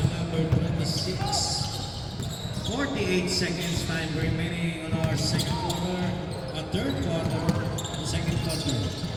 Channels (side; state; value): both; identical; correlation 1.00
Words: number 26. 48 seconds time remaining on our second quarter, third quarter, the second quarter.